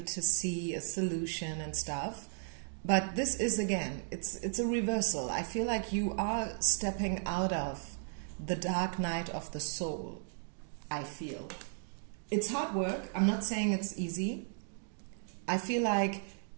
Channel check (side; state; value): left; silent; digital silence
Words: to see a solution and stuff. But this is, again, it's a reversal. I feel like you are stepping out of the dark night of the soul, I feel. It's hard work. I'm not saying it's easy. I feel like